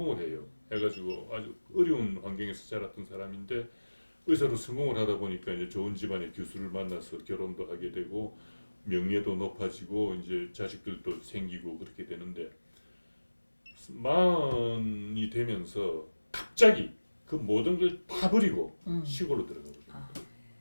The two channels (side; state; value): both; inverted; correlation -1.00